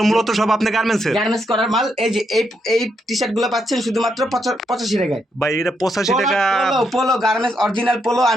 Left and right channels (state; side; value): normal; both; correlation 0.79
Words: মূলত সব আপনি গার্মেন্টস এর? গার্মেন্টস করার মাল। এই যে এই টি-শার্ট গুলো পাচ্ছেন শুধুমাত্র 85 টাকায় ভাই। এটা 85 টাকা। পোলো গার্মেন্টস অরিজিনাল পোলো